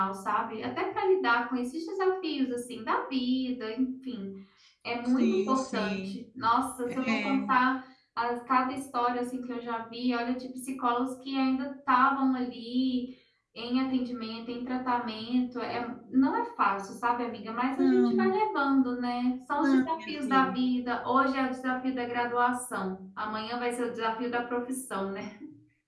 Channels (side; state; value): both; identical; correlation 1.00